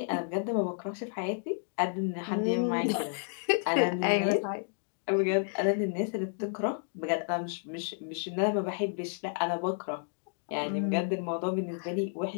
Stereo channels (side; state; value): right; silent; digital silence